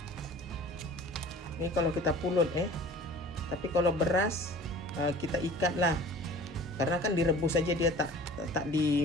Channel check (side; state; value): both; normal; correlation 0.44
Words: Ini kalau kita pulut tapi kalau beras kita ikat lah, karena kan direbus saja dia, tak